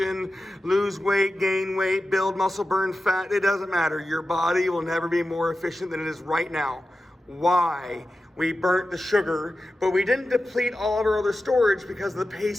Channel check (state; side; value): normal; both; correlation 0.93